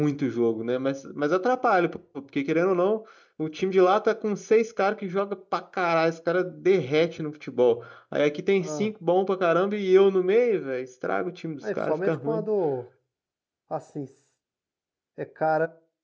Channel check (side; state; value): both; identical; correlation 1.00